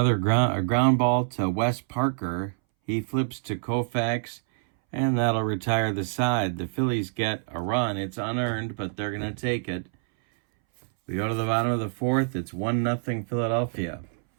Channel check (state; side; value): silent; left; 61 dB below the other